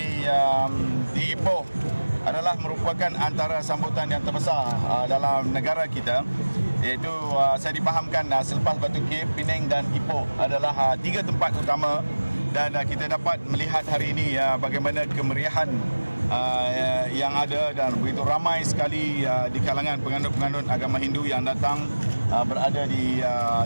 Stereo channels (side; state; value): both; inverted; correlation -1.00